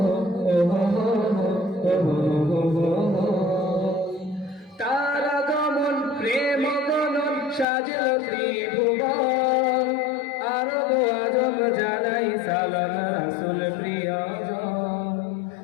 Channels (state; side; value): drops out; right; at 7.7 s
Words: তার আগমন প্রেম গণন সাজল ত্রিভুবন, আরব আজম জানাই সালাম রাসূল প্রিয়জন।